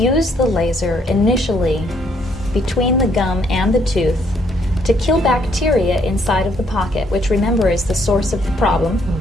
the laser initially between the gum and the tooth to kill bacteria inside of the pocket, which, remember, is the source of the problem.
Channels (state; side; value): normal; both; correlation 0.69